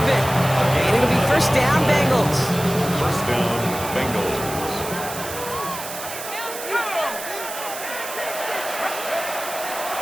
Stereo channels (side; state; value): right; noise; hiss, 9 dB below the sound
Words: And it'll be first down, Bengals. First down, Bengals.